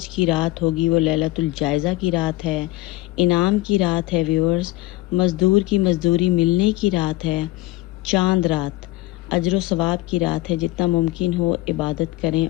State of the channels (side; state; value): right; quieter; 17.7 dB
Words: की रात होगी वो लैलतुल जायज़ा की रात है, इनाम की रात है व्यूअर्स, मज़दूर की मज़दूरी मिलने की रात है, चांद रात, अजर सवाब की रात है। जितना मुमकिन हो इबादत करें